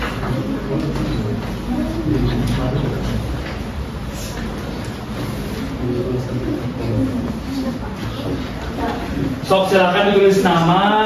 Sok, silakan ditulis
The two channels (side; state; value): both; identical; correlation 1.00